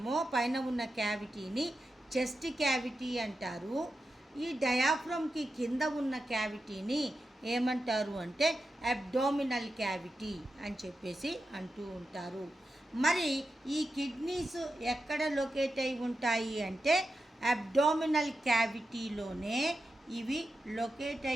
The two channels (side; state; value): both; normal; correlation 0.90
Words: పైన ఉన్న క్యావిటీని చెస్ట్ క్యావిటీ అంటారు. ఈ డయాఫ్రమ్కి కింద ఉన్న క్యావిటీని ఏమంటారు అంటే అబ్డామినల్ క్యావిటీ అని చెప్పేసి అంటూ ఉంటారు. మరి ఈ కిడ్నీస్ ఎక్కడ లొకేట్ అయి ఉంటాయి అంటే అబ్డామినల్ క్యావిటీలోనే ఇవి లొకేట్